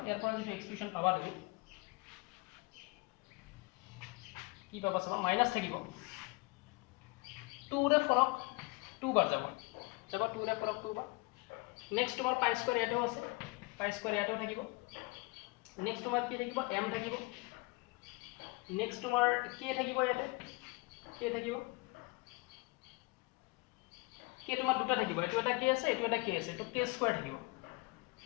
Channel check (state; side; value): quieter; right; 25.9 dB